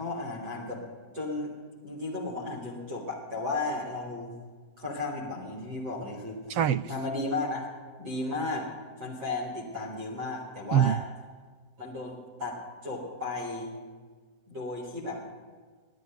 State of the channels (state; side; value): late; left; 7.8 ms